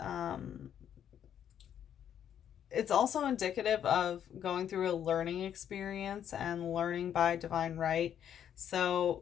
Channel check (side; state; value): right; quieter; 9.5 dB